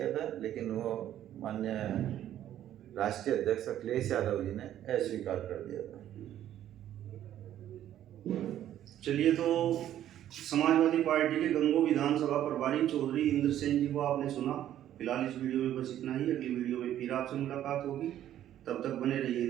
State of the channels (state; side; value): quieter; left; 11.7 dB